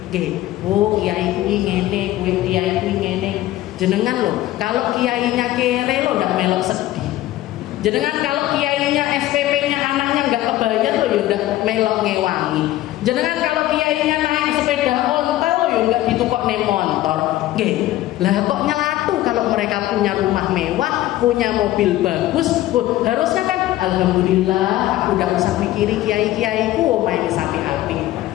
Kiai kuwi ngene, kiai kuwi ngene. Jenengan loh, kalau kiainya kere lo ndak melok sedih. Jenengan kalau kiainya SPP-nya anaknya nggak kebayar lo ya ndak melok ngewangi. Jenengan kalau kiainya naik sepeda ontel lo ya nggak ditukok nih motor. Lah kok nyelatu kalau mereka punya rumah mewah, punya mobil bagus. Harusnya kan alhamdulillah aku ndak usah mikiri kiai-kiaiku omahe wis apik-apik.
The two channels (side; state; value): right; quieter; 15.2 dB